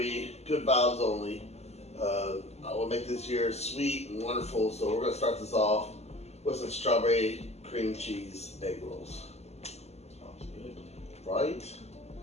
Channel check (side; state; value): right; late; 0.31 ms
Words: good vibes only. I will make this year sweet and wonderful, so we're going to start this off with some strawberry cream cheese egg rolls. Sounds good. Right?